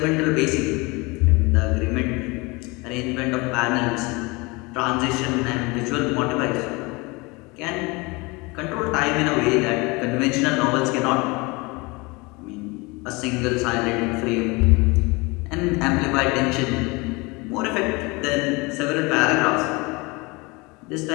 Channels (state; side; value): quieter; right; 25.7 dB